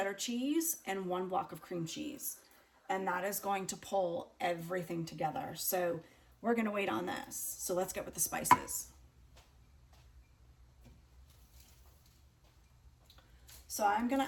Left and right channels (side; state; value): both; identical; correlation 1.00